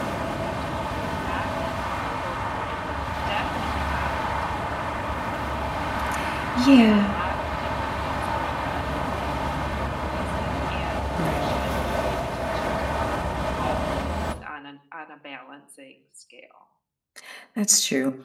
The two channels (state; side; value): identical; both; correlation 1.00